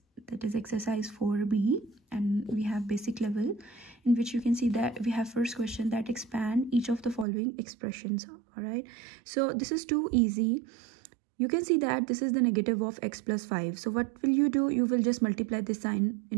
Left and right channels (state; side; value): drops out; left; at 7.2 s